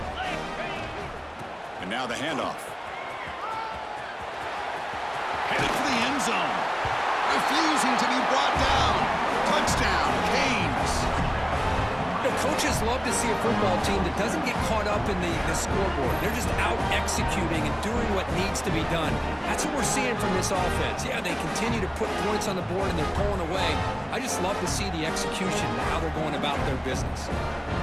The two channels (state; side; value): identical; both; correlation 1.00